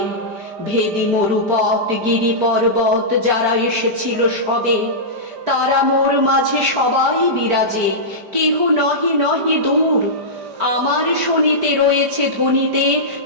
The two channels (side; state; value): left; late; 5.0 ms